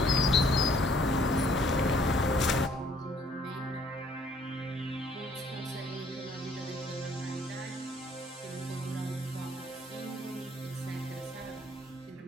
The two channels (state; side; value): normal; both; correlation 0.62